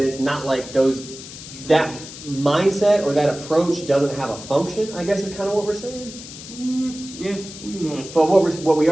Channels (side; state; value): left; noise; hiss, 14 dB below the sound